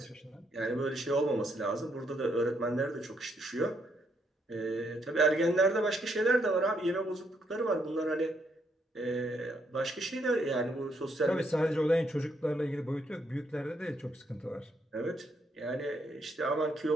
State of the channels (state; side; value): normal; both; correlation 0.74